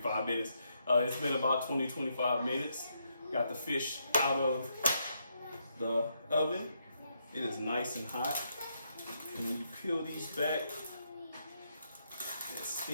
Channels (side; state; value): both; inverted; correlation -0.78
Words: minutes. It's been about 20-25 minutes. Got the fish out of the oven. It is nice and hot. And when you peel these back, the